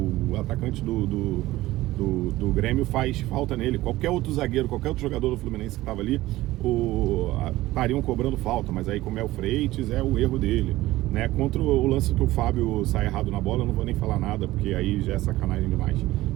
atacante do Grêmio faz falta nele. Qualquer outro zagueiro, qualquer outro jogador do Fluminense que estava ali, estariam cobrando falta, mas aí como é o Freitas, é o erro dele, né? Contra o lance que o Fábio sai errado na bola, eu não vou nem falar nada, porque aí já é sacanagem demais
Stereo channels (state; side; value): quieter; left; 17.1 dB